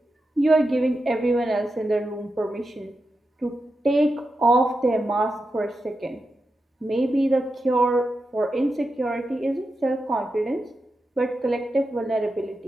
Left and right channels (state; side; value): normal; both; correlation 0.89